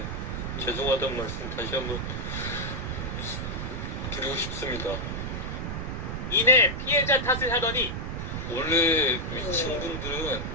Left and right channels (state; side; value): noise; right; rumble, 4 dB below the sound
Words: 죄송하다는 말씀 다시 한번 드리고 싶습니다. 이내 피해자 탓을 하더니 원래 위층 분들은